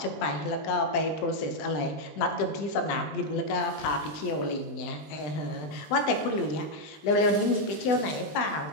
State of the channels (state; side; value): late; right; 20 ms